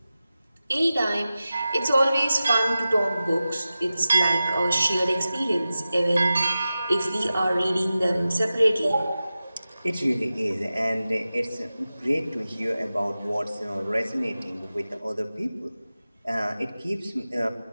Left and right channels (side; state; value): both; inverted; correlation -0.94